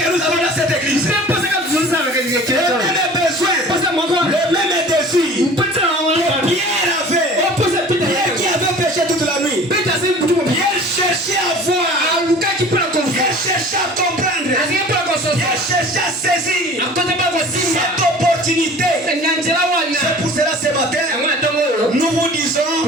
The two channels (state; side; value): normal; both; correlation 0.44